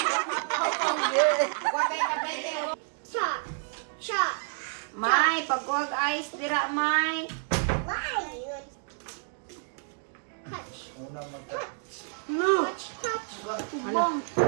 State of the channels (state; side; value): silent; left; 58 dB below the other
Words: May, pagkuhag ice, dira, may. No. Bong.